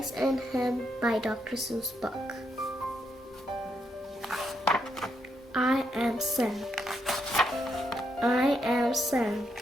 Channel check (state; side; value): normal; both; correlation 0.79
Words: and Ham by Dr. Seuss book? I am Sam. I am Sam.